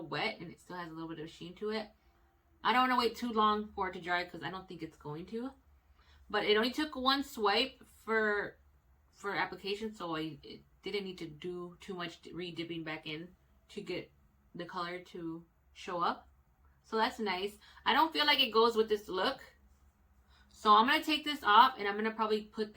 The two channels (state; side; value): identical; both; correlation 1.00